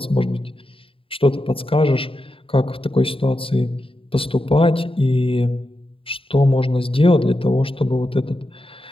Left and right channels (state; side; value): late; right; 0.26 ms